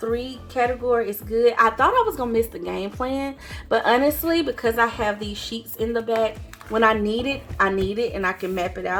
category is good. I thought I was gonna miss the game plan, but honestly, because I have these sheets in the back, when I need it, and I can map it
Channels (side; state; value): both; identical; correlation 1.00